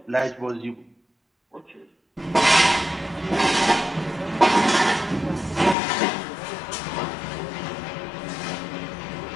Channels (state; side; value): drops out; right; at 5.8 s